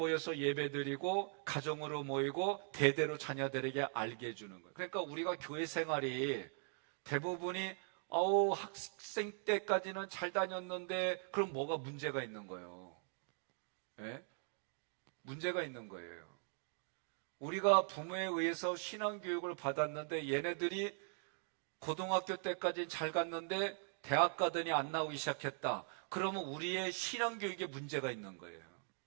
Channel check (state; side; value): silent; left; 51 dB below the other